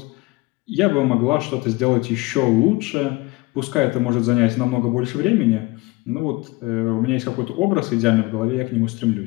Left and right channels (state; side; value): quieter; right; 22.7 dB